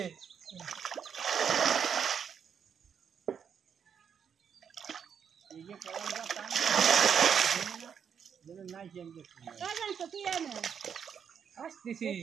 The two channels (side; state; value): left; quieter; 7.5 dB